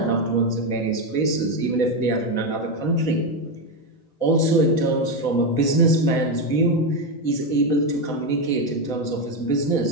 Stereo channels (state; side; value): late; right; 4.2 ms